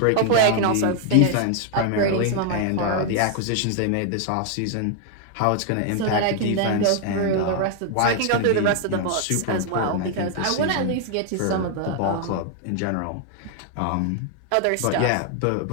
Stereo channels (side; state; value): both; different; correlation 0.00